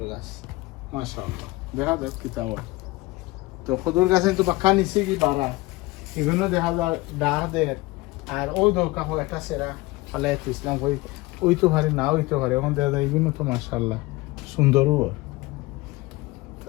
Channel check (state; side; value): quieter; right; 21.1 dB